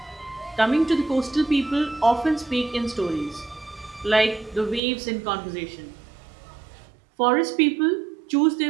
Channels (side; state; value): left; drops out; at 4.8 s